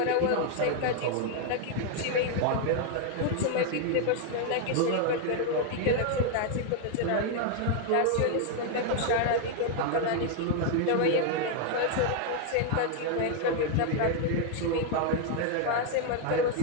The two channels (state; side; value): different; both; correlation 0.00